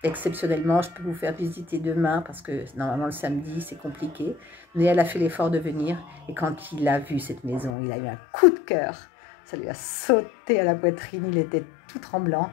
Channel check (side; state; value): right; drops out; at 7.7 s